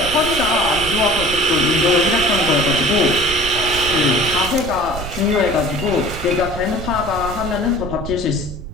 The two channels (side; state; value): right; noise; rumble, 10 dB below the sound